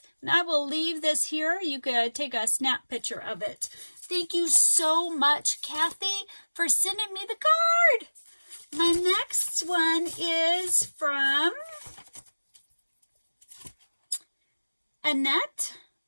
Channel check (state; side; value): inverted; both; correlation -1.00